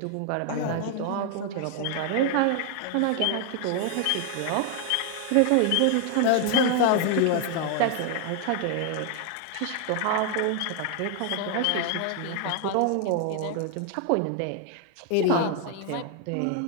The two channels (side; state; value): both; different; correlation 0.00